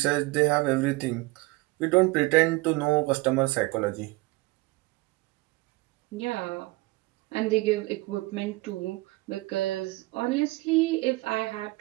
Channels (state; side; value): quieter; left; 22.1 dB